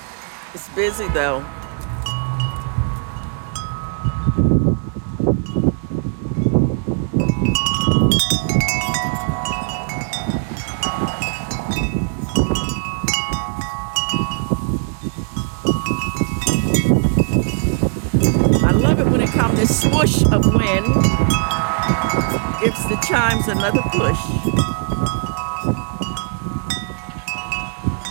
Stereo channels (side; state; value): left; silent; 56 dB below the other